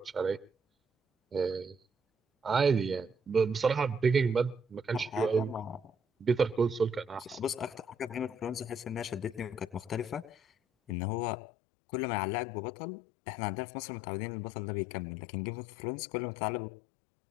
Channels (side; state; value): right; drops out; at 10.9 s